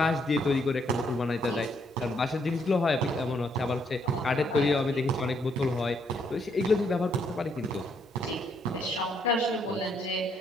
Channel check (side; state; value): both; normal; correlation 0.72